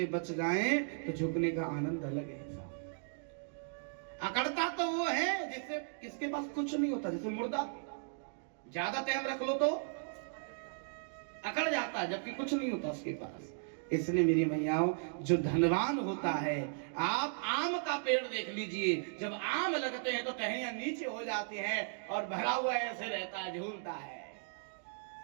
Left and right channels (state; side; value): silent; left; digital silence